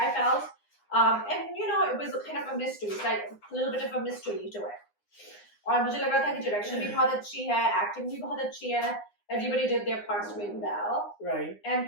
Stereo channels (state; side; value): late; right; 9.8 ms